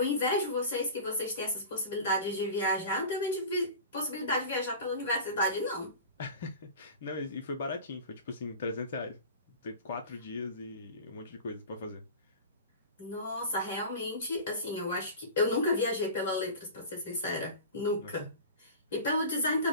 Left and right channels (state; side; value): inverted; both; correlation -0.33